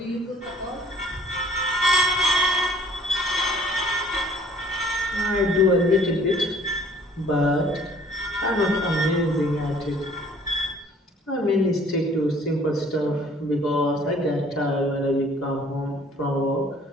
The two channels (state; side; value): normal; both; correlation 0.56